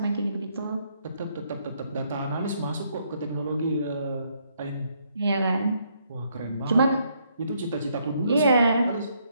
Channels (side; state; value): both; inverted; correlation -0.72